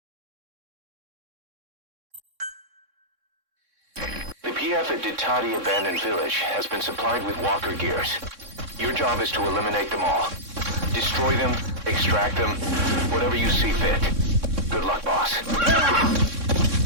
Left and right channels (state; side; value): late; left; 3.6 ms